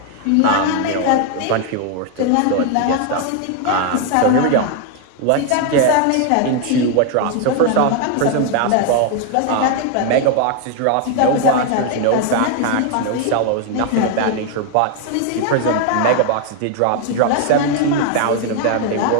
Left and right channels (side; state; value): both; different; correlation 0.00